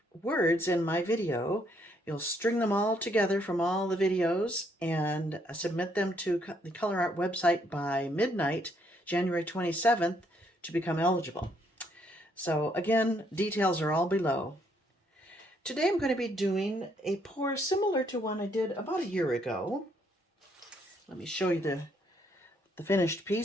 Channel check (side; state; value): both; normal; correlation 0.71